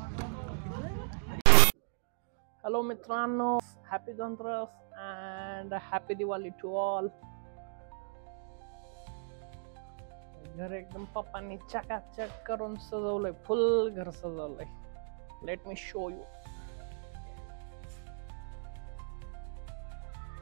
हॅलो मित्रांनो, happy Dhanteras and happy Diwali to all. घर एकदम पप्पांनी चकाचक करून सजवलंय. फुल घर सजवलंय. Let me show you.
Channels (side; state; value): left; silent; digital silence